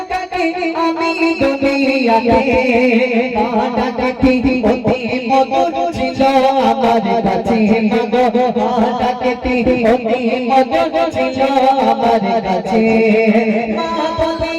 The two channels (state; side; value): identical; both; correlation 1.00